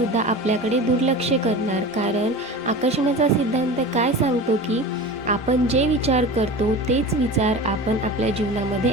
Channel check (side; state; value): both; normal; correlation 0.33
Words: आपल्याकडे दुर्लक्ष करणार, कारण आकर्षणाचा सिद्धांत काय सांगतो की आपण जे विचार करतो तेच विचार आपण आपल्या जीवनामध्ये